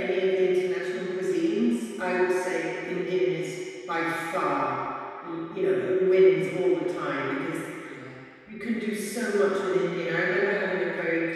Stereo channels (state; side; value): identical; both; correlation 1.00